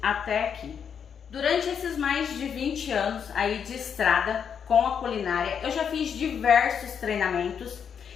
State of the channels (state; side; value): quieter; right; 7.4 dB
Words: até aqui. Durante esses mais de 20 anos aí de estrada com a culinária, eu já fiz diversos treinamentos